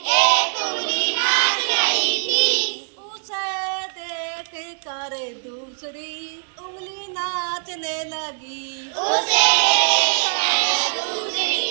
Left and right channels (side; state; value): left; silent; digital silence